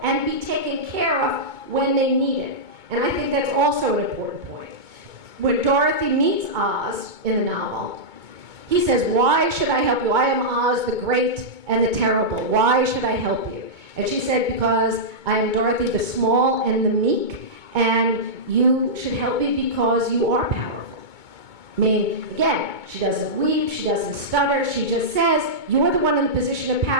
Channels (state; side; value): late; left; 2.2 ms